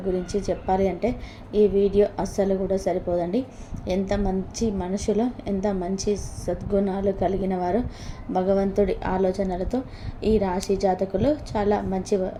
గురించి చెప్పాలి అంటే ఈ వీడియో అస్సలు కూడా సరిపోదండి. ఎంత మంచి మనుషులు, ఎంత మంచి సద్గుణాలు కలిగిన వారు, భగవంతుడి ఆలోచనలతో ఈ రాశి జాతకులు చాలా మంచి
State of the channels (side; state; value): both; identical; correlation 1.00